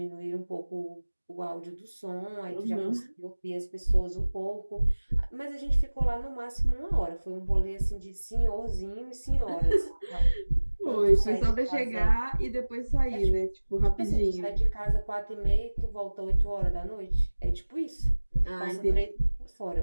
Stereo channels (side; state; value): both; inverted; correlation -1.00